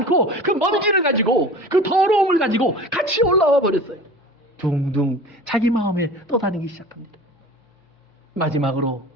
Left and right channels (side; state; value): both; normal; correlation 0.39